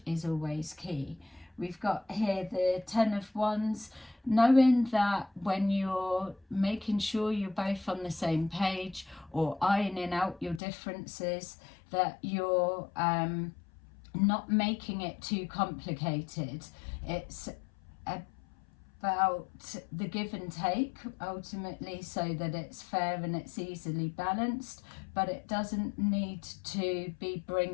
is always key. We've got here the Ten of Wands, knowing that when you're making sure you're both on the same page, or ironing out your differences, that you're not making it too complicated. It's about the give and take ultimately, so that it's fair and it's easily balanced, but it doesn't need to be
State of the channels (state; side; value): drops out; right; at 10.6 s